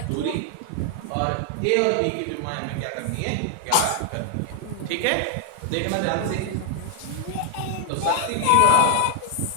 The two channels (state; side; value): different; both; correlation 0.00